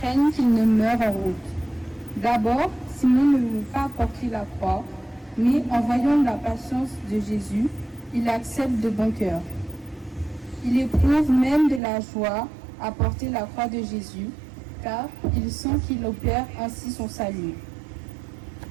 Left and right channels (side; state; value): left; drops out; at 11.8 s